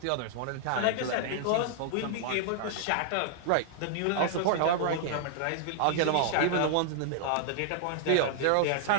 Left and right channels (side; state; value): both; different; correlation -0.01